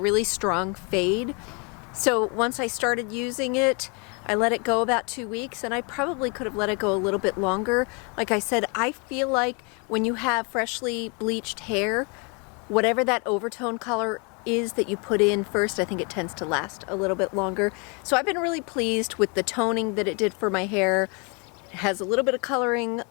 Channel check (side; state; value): right; quieter; 33.5 dB